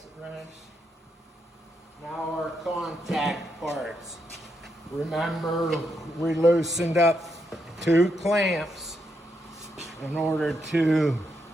wrench. Now our contact parts. Remember, we loosened up 2 clamps in order to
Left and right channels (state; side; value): normal; both; correlation 0.80